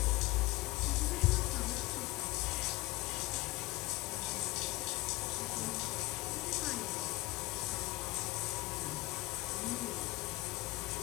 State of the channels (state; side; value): quieter; right; 21.1 dB